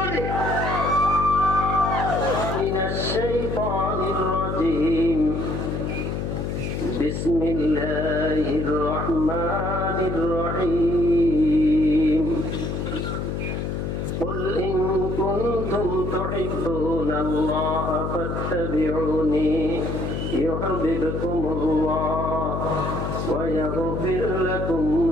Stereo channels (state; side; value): noise; left; hum, 3 dB below the sound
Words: بسم الله الرحمن الرحيم قل إن كنتم تحبون الله فاتبعوني يحببكم الله ويغفر لكم